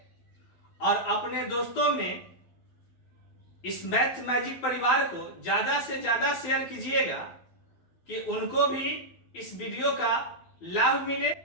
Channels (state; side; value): late; right; 12 ms